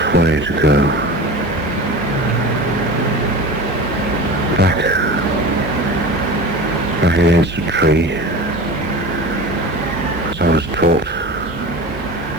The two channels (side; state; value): both; normal; correlation 0.33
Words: way to go. Back against a tree, as I was taught